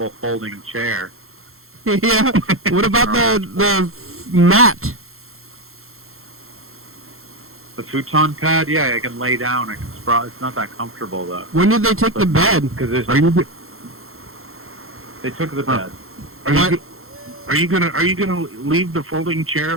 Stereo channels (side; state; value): left; late; 0.62 ms